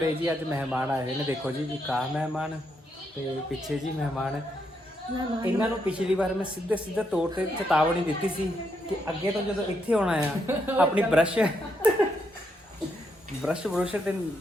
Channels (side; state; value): both; normal; correlation 0.79